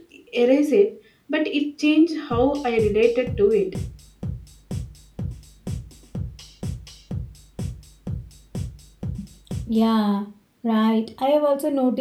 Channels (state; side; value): identical; both; correlation 1.00